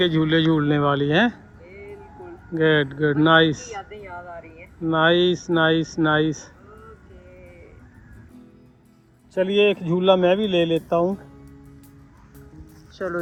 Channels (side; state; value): both; identical; correlation 1.00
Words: झूले झूलने वाली हैं। बिल्कुल। गुड गुड, नाइस यादें याद आ रही हैं। Nice nice nice. ओके। चलिए एक झूला मैं भी ले लेता हूँ। चलो